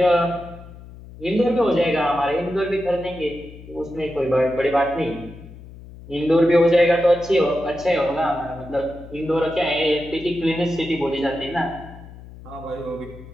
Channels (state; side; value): noise; left; hum, 17 dB below the sound